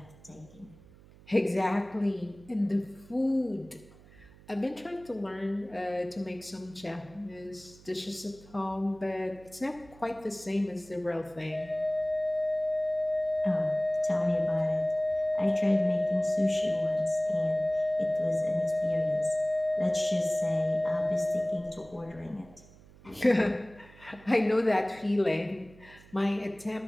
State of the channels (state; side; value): noise; right; hum, 23 dB below the sound